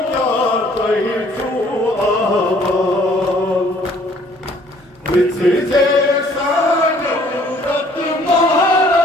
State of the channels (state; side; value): normal; both; correlation 0.59